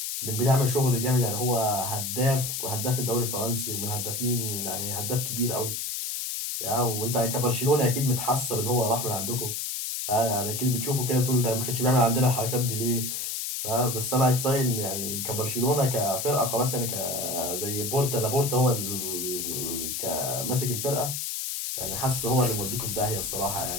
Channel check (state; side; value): noise; left; hiss, 3 dB below the sound